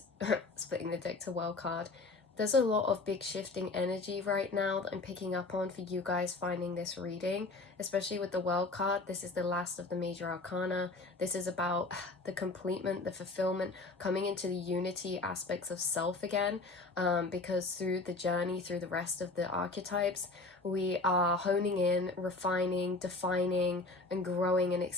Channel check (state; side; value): quieter; right; 3.4 dB